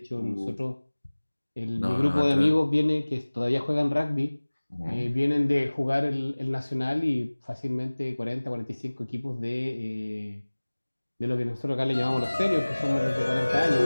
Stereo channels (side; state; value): both; inverted; correlation -1.00